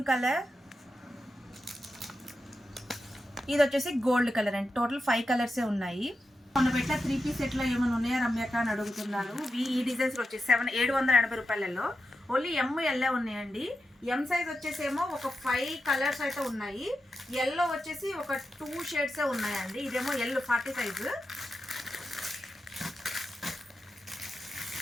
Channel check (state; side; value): normal; both; correlation 0.89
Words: కలర్. ఇది వచ్చేసి గోల్డ్ కలర్ అండి. టోటల్ 5 కలర్సే ఉన్నాయి. మొన్న పెట్టిన 3 పీస్ సెట్లో ఏమైనా ఉన్నాయా రమ్యక అని అడుగుతున్నారు. ఈ డిజైన్స్ వచ్చేసి 780 రూపాయలలో ఓన్లీ ML ఉన్నాయండి. M సైజ్ వచ్చేసేమో ఒక 5 కలర్స్ అయితే ఉన్నాయి. ఎల్లో వచ్చేసి ఒక 2 షేడ్సే ఉన్నాయండి. ఇదేమో L 40 సైజు.